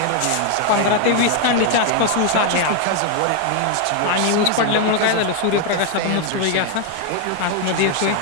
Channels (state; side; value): different; both; correlation 0.01